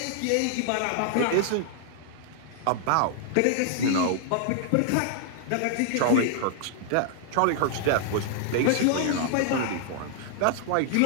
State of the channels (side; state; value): both; different; correlation 0.00